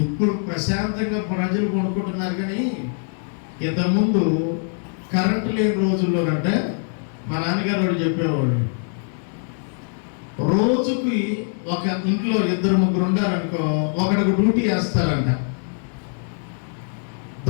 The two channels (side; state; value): right; silent; 58 dB below the other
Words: ఇప్పుడు ప్రశాంతంగా ప్రజలు కొనుక్కుంటున్నారు, కానీ ఇంతకుముందు కరెంటు లేని రోజుల్లోనంటే మా నాన్నగారు వాడు చెప్పేవాడు, రోజుకి ఒక ఇంట్లో 2-3 ఉండారనుకో, ఒకడికి డ్యూటీ వేస్తారంట.